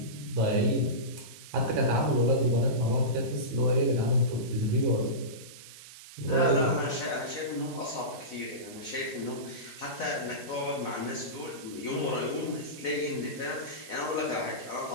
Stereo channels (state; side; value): noise; right; hiss, 16 dB below the sound